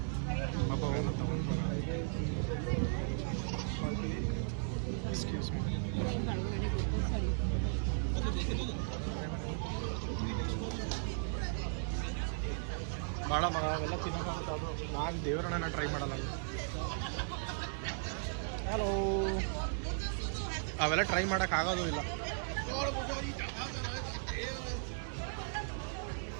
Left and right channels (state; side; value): silent; left; digital silence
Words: ಪಾಪ ಅವನು ತಗೊಂಡು ಎಕ್ಸ್ಕ್ಯೂಸ್ ಮೀ ಭಾಳ ಮಗ ಅವೆಲ್ಲ ತಿನ್ನೋಕ್ಕಾಗುತ್ತೆ ಅದು ನಾನು ದೇವರನ್ನ ಟ್ರೈ ಮಾಡಲ್ಲ ಹಲೋ ಅವೆಲ್ಲ ಟ್ರೈ ಮಾಡೋಕ್ಕಾಗೋದು ಇಲ್ಲ